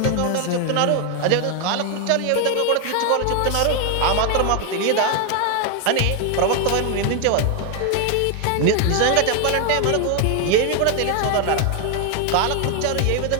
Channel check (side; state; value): both; different; correlation 0.01